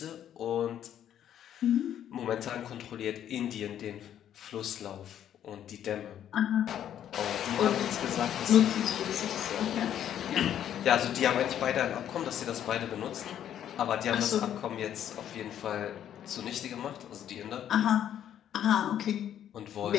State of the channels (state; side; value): quieter; right; 10.3 dB